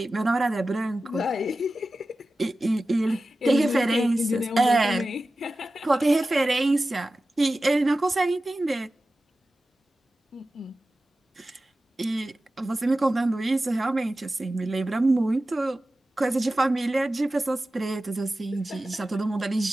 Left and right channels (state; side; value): normal; both; correlation 0.95